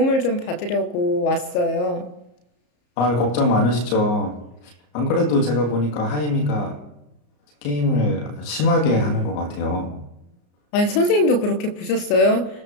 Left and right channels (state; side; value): late; right; 34 ms